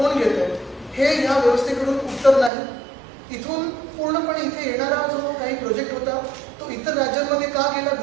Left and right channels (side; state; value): left; drops out; at 2.5 s